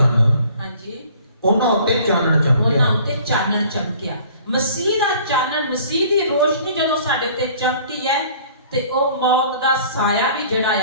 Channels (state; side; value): inverted; both; correlation -0.52